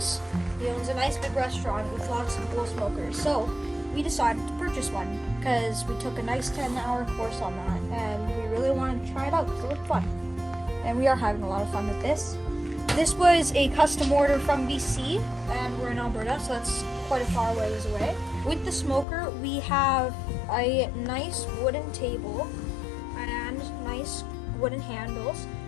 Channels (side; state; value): right; drops out; at 19.1 s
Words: He owns a nice big restaurant with lots of cool smokers. So we decided to purchase one because we took a nice 10-hour course on that, and we really wanted to try it out because it looked fun. And we are having a lot of fun with this. This was a custom order from BC, and we're in Alberta, so that's quite a far ways away. With the smoker, we have a nice wooden table and nice wooden handles,